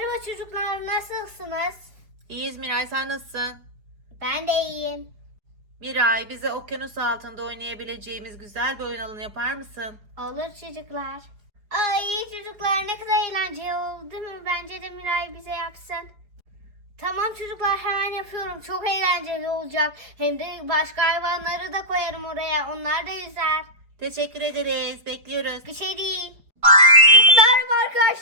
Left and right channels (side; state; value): left; late; 4.9 ms